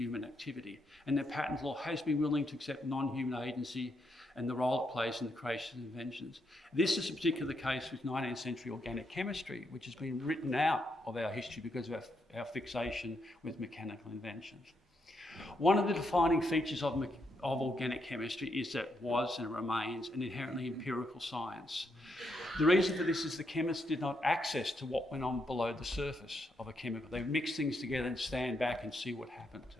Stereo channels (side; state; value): both; normal; correlation 0.79